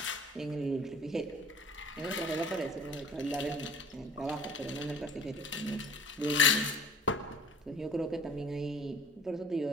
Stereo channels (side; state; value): both; normal; correlation 0.49